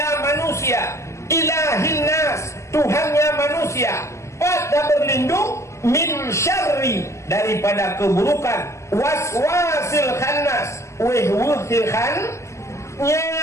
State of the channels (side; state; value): right; late; 0.14 ms